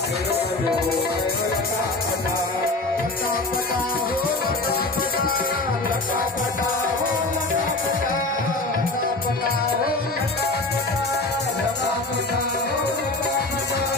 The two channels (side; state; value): right; quieter; 3.0 dB